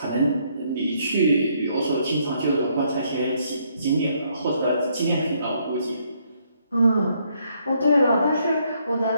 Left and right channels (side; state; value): both; inverted; correlation -0.71